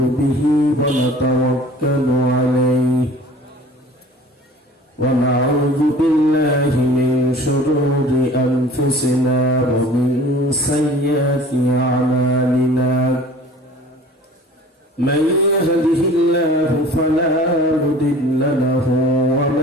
به ونتوكل عليه ونعوذ بالله من شرور أنفسنا ومن سيئات أعمالنا من يهده الله فلا مضل له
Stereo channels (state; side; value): normal; both; correlation 0.46